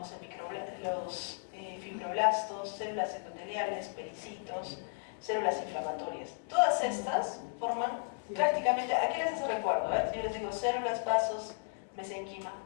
los fibroblastos, células endoteliales, pericitos, células inflamatorias. Todas estas forman prácticamente, ¿a qué les hace recuerdo? Yo les digo células, vasos, mesenquima.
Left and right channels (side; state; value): right; silent; 55 dB below the other